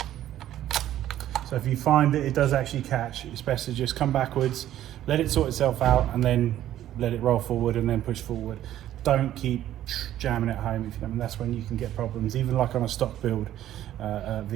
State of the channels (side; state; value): left; quieter; 12.5 dB